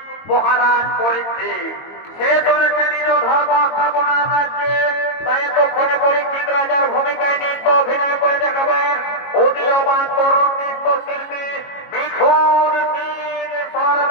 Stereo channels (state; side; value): late; right; 22 ms